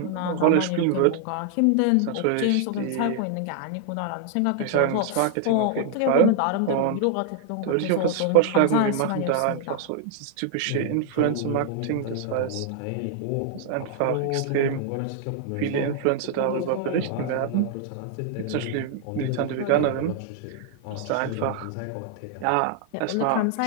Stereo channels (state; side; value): different; both; correlation 0.00